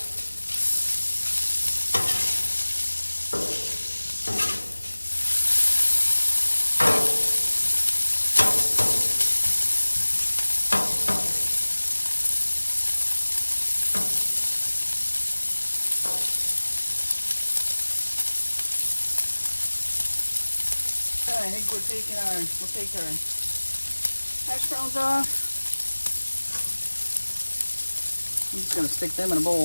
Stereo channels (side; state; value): both; inverted; correlation -1.00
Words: I think we'll take our hash browns off. I'm just going to stick them in a bowl.